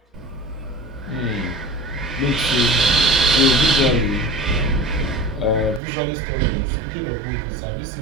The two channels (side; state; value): left; drops out; at 5.8 s